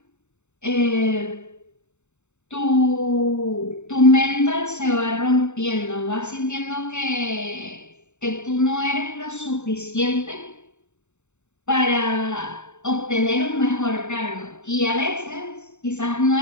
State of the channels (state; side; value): late; right; 0.83 ms